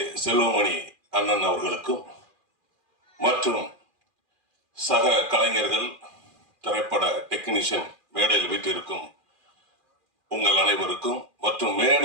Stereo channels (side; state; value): left; late; 2.4 ms